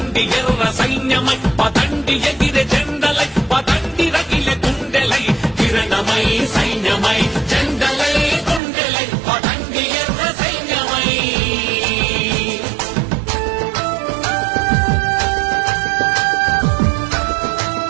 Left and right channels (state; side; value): drops out; left; at 8.6 s